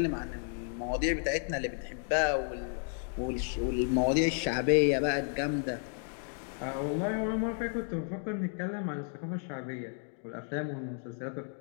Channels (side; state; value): right; silent; 56 dB below the other